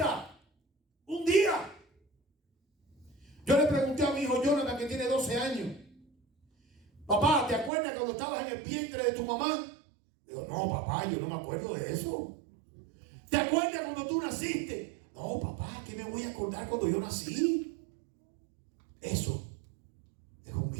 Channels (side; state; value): left; drops out; at 7.7 s